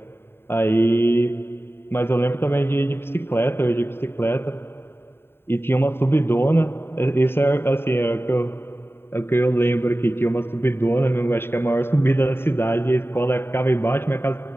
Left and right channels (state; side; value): late; right; 0.11 ms